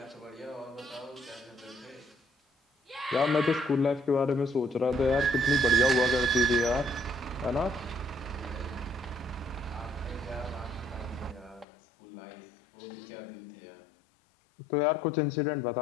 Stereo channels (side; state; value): right; drops out; at 11.7 s